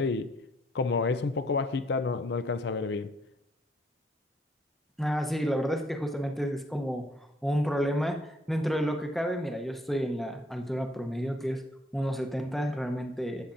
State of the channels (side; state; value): both; normal; correlation 0.66